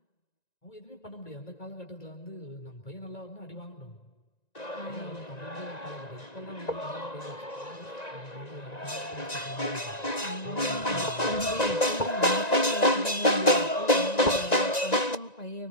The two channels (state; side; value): late; right; 1.9 ms